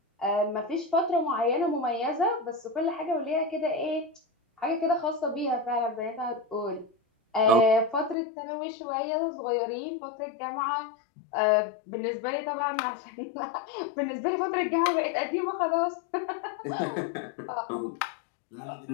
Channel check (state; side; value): drops out; right; at 8.2 s